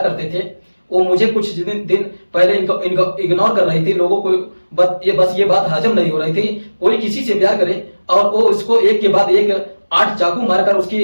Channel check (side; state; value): both; inverted; correlation -1.00